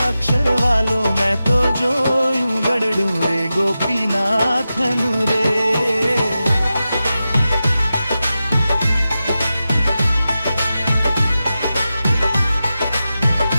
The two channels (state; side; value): inverted; both; correlation -0.92